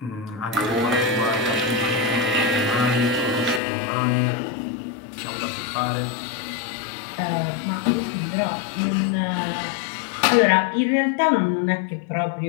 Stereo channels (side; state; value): right; drops out; at 3.6 s